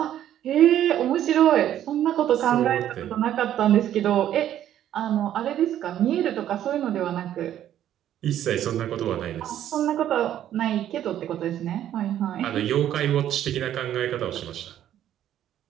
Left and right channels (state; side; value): quieter; left; 11.3 dB